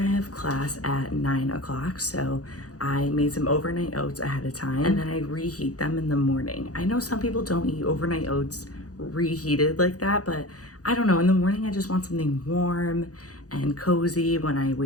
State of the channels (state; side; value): late; right; 0.67 ms